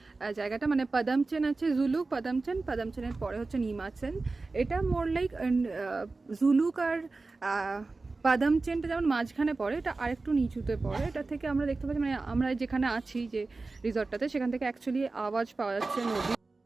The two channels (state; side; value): quieter; left; 3.6 dB